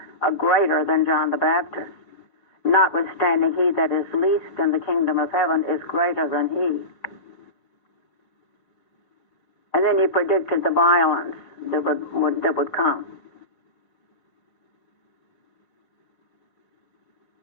a greater than John the Baptist. Notwithstanding, he that is least in the kingdom of heaven is greater than he. And then he predicted the violence that would come.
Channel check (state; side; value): late; right; 4.9 ms